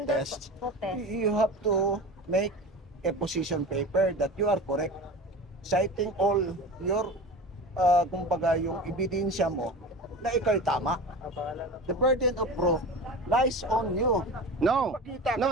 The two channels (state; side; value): normal; both; correlation 0.32